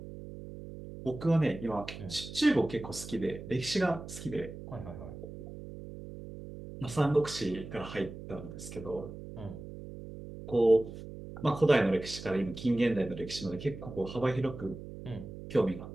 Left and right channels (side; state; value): right; noise; hum, 12 dB below the sound